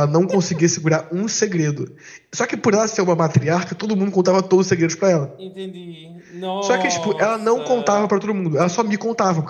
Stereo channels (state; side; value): identical; both; correlation 1.00